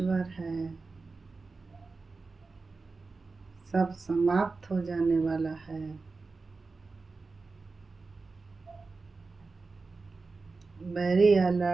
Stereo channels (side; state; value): left; quieter; 4.0 dB